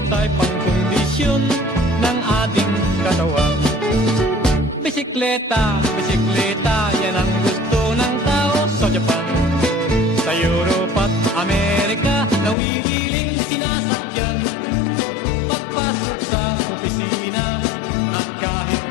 ay pangkondisyon ng ating katawan. Bisikleta, bisikleta, yan ang gusto ng tao sa Japan. Sa Europe at Amerika, nawiwiling sinasakyan. Pagpasok sa opisina at kahit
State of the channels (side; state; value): right; drops out; at 12.6 s